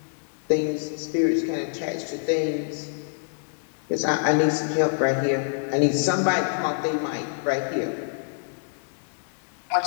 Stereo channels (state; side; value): silent; right; digital silence